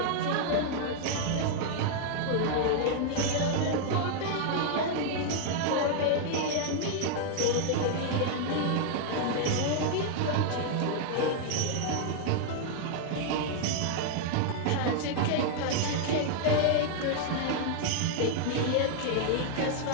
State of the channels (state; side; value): different; both; correlation 0.00